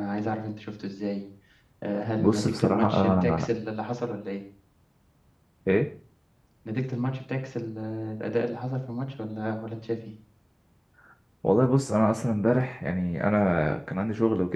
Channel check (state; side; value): identical; both; correlation 1.00